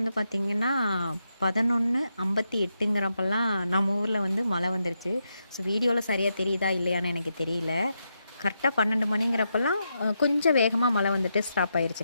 பார்த்திங்கன்னா 11:58ங்கிறப்பெல்லாம் நம்ம ஊரில் வந்து மழை வந்துருச்சு. ஸோ வீடியோவில் சரியாக தெரியுதா இல்லையான்னு எனக்கு தெரியல. கரெக்டாக 12 மணிங்கிறப்பெல்லாம் கொஞ்சம் வேகமாக மழை வந்துட்டு ஸ்டாப்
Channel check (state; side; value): inverted; both; correlation -0.84